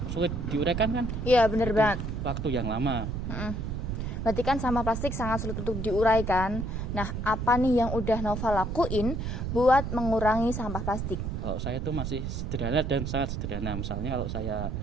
sulit diuraikan kan, Iya, bener banget. waktu yang lama. Berarti kan sampah plastik sangat sulit untuk diuraikan. Nah, apa nih yang udah Novel lakuin buat mengurangi sampah plastik? Kalau saya itu masih sederhana dan sangat sederhana. Misalnya kalau saya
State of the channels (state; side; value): noise; right; rumble, 3 dB below the sound